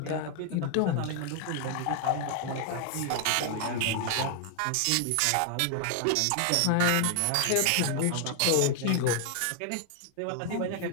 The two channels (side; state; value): both; different; correlation 0.00